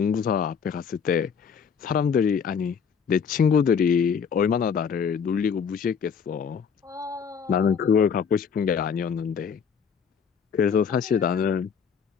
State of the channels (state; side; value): quieter; right; 6.7 dB